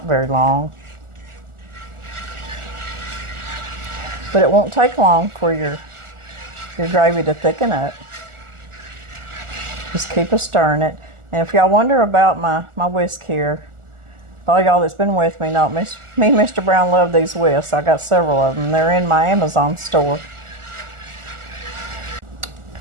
very long. But it won't take long for your gravy to thicken up. Just keep a stirring it. And if y'all wonder about my whisk here, all y'all that's been with me know me and Mr. Brown love these whisks. I got several of them. They're in my Amazon store.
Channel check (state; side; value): late; left; 1.4 ms